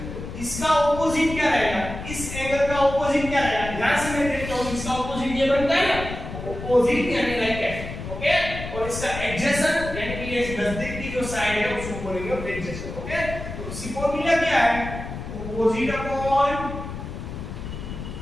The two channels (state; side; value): noise; left; rumble, 8 dB below the sound